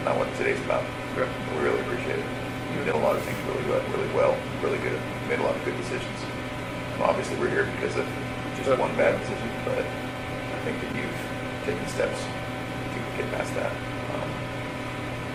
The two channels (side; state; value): both; identical; correlation 1.00